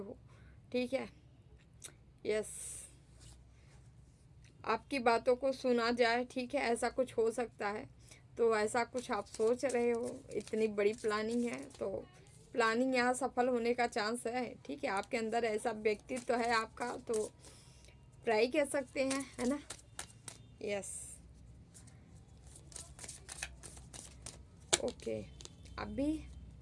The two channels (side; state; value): both; identical; correlation 1.00